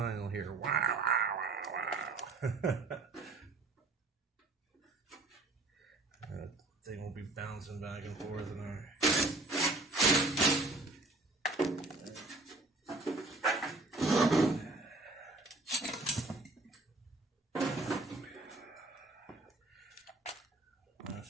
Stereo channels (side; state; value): left; quieter; 3.2 dB